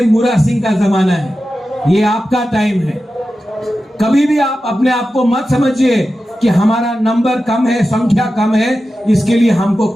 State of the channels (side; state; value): both; normal; correlation 0.92